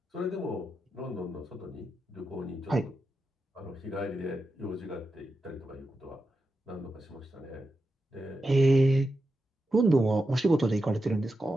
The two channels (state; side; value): normal; both; correlation 0.88